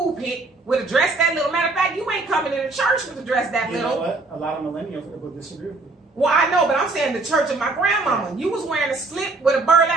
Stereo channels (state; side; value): quieter; left; 3.3 dB